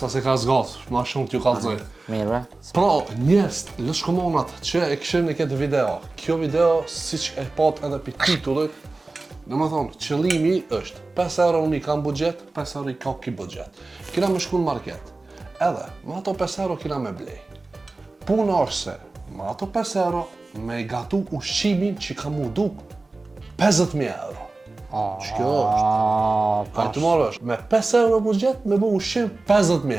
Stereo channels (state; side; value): quieter; left; 3.3 dB